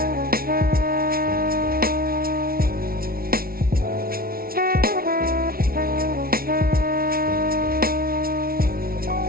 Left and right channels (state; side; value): late; left; 0.43 ms